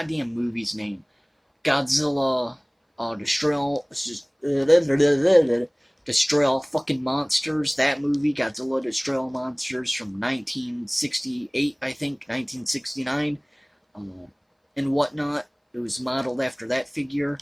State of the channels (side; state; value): both; identical; correlation 1.00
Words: movie's name? Godzilla, Destroy All Fucking Monsters. That movie, Godzilla Destroy All Monsters from 1968, I think, 1969, and whatnot. It was modeled after that figure,